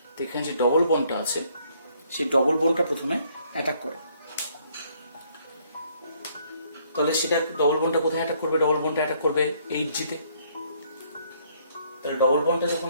এখানে যে ডবল বন্ডটা আছে, সেই ডবল বন্ডটা প্রথমে অ্যাটাক করে। তাহলে সেটা ডবল বন্ডটা কোথায় অ্যাটাক করবে? ডবল বন্ডটা অ্যাটাক করবে Hg তে। তাহলে ডবল বন্ডটা যখন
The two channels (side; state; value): both; inverted; correlation -0.66